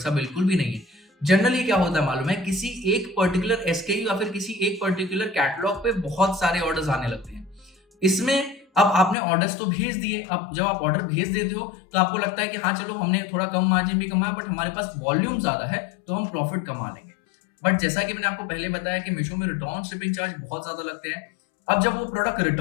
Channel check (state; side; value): drops out; right; at 9.2 s